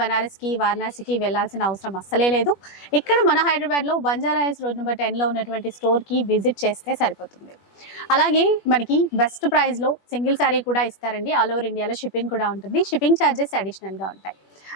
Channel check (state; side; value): late; right; 21 ms